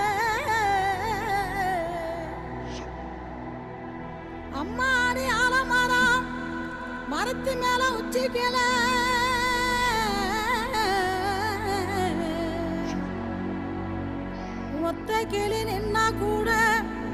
அம்மாடி ஆலமரம் மரத்து மேல உச்சிக்கல,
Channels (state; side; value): identical; both; correlation 1.00